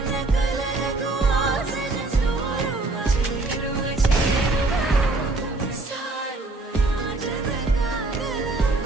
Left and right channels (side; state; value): left; quieter; 3.1 dB